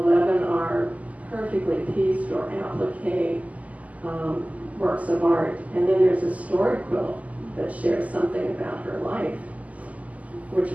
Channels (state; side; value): late; left; 0.072 ms